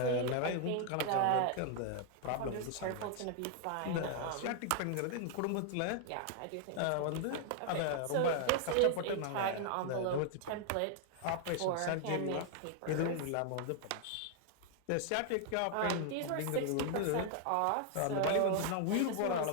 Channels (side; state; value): both; different; correlation 0.00